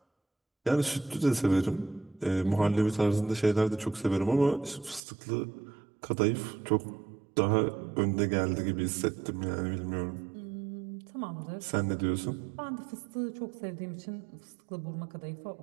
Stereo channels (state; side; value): drops out; left; at 5.0 s